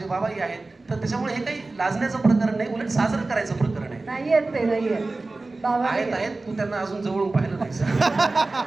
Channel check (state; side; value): quieter; left; 3.3 dB